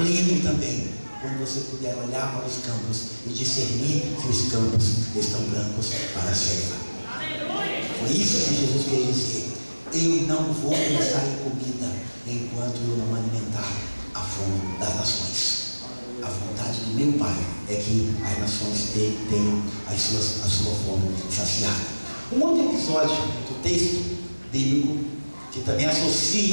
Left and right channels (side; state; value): both; inverted; correlation -1.00